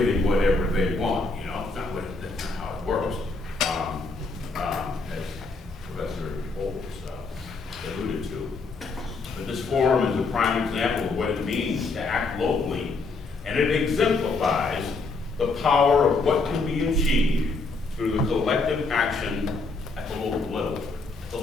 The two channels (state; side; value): quieter; right; 3.8 dB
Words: whatever they want. That's not how it works. As Professor Bolts alluded to. But this forum is a prime example of what it means to act locally, and it exemplifies the power of what can be achieved through the collective action at the local